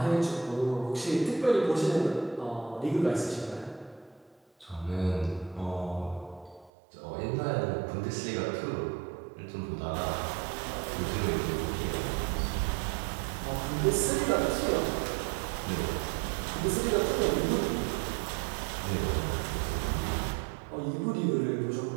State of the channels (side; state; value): left; drops out; at 6.7 s